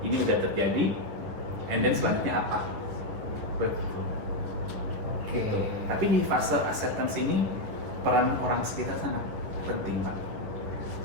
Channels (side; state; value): left; late; 10 ms